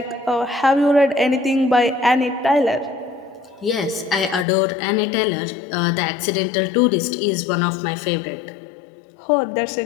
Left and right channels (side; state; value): right; drops out; at 4.5 s